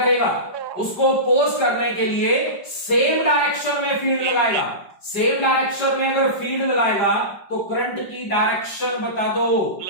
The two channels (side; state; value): right; late; 5.0 ms